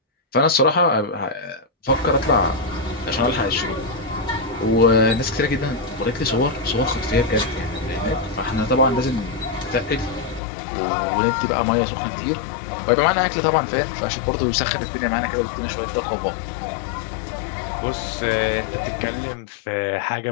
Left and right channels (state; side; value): drops out; right; at 10.4 s